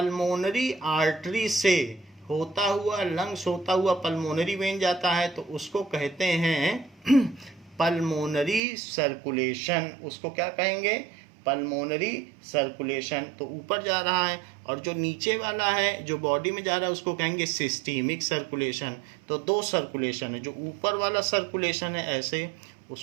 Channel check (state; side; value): drops out; left; at 8.6 s